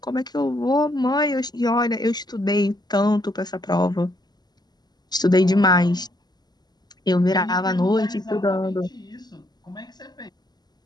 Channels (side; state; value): right; late; 0.20 ms